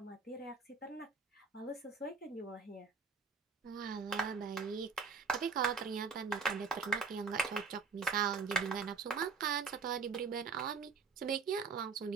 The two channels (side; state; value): left; quieter; 5.3 dB